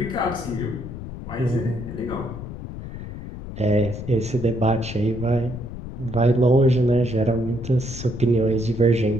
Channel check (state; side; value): noise; left; rumble, 10 dB below the sound